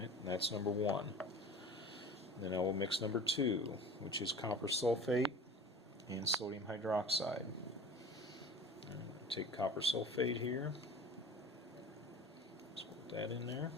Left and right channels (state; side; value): normal; both; correlation 0.41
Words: That's number one. Then I will mix number two, which is copper sulfate and sodium hydroxide. Take copper sulfate here, just put that in there.